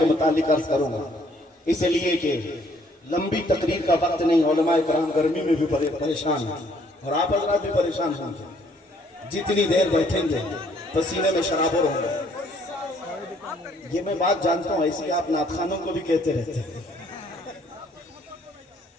متعلق عرض کروں گا، اس لیے کہ لمبی تقریر کا وقت نہیں، علماء کرام گرمی میں بھی پریشان ہیں اور آپ حضرات بھی پریشان ہوں گے، جتنی دیر بیٹھیں گے پسینے میں شرابور ہوں گے۔ یہ میں بات جانتا ہوں، ایسی آپ نعت خوانوں کو بھی کہتے رہتے ہیں۔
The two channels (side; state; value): both; normal; correlation 0.64